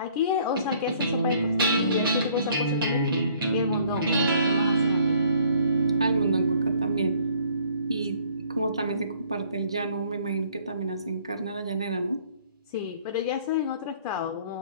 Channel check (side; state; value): both; inverted; correlation -0.59